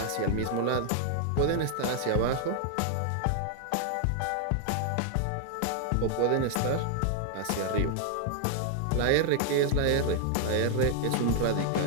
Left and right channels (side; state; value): both; different; correlation 0.00